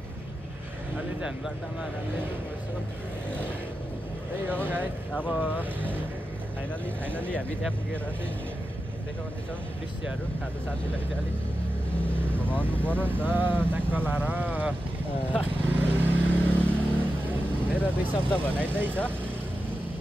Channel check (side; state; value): both; normal; correlation 0.91